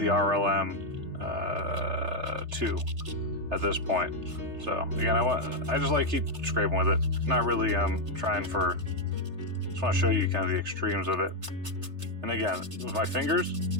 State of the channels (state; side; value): late; left; 3.3 ms